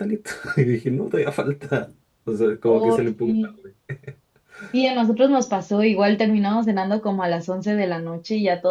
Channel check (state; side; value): identical; both; correlation 1.00